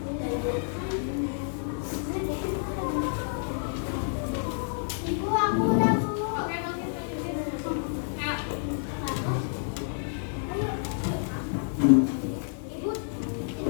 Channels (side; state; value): right; silent; digital silence